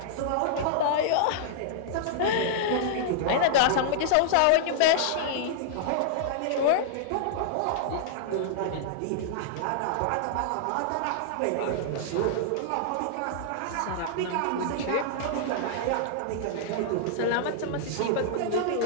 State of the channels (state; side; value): different; both; correlation -0.01